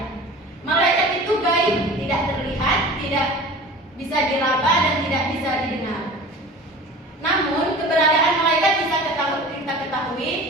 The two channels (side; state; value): both; normal; correlation 0.39